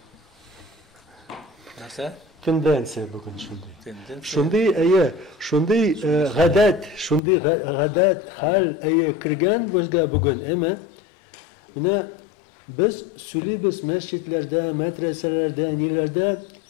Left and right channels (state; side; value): drops out; right; at 7.2 s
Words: Narsa? Tendensiya bugun shunday. Tendensiya. Shunday g'adat hal kirgan bizga bugun, emi? Mana biz söyleybiz masjidlarda, madrasalarda, nelarda